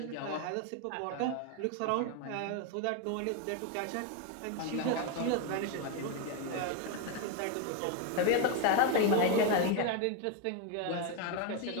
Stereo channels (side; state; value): both; different; correlation 0.01